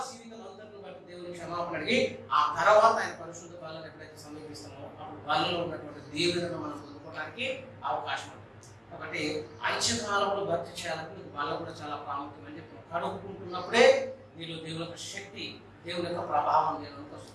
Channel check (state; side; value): identical; both; correlation 1.00